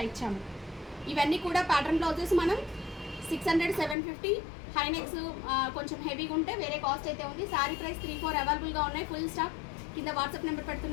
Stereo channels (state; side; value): drops out; right; at 4.0 s